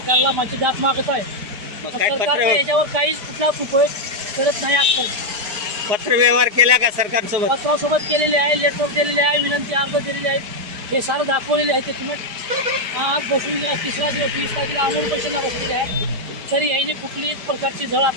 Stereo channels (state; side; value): late; left; 5.2 ms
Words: माझी दाद मागत आहे। मग काय सरकार याच्यावर काहीच कुठलाच उपयोग करत नाही। आजकाल पत्र व्यवहार केला का सरकारसोबत? पत्रासोबत केलेले आहे, लेटर दिलेले आहे, विनंती अर्ज दिलेले आहेत, हे सारं दाखवलेले आहे की तुम्ही आज बसून तिसरा दिवस 20 तारखेला अमोल पैशांना बसलेले आहे, तरी याने कुठलीच प्रकारची झळ